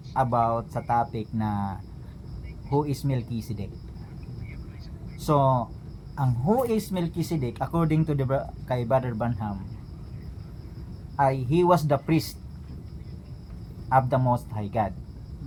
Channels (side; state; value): both; identical; correlation 1.00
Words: about sa topic na who is Melchizedek. So, ang who is Melchizedek according to kay Brother Branham ay he was the priest of the Most High God.